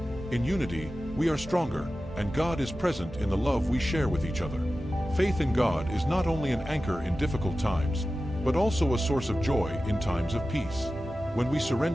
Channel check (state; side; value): normal; both; correlation 0.94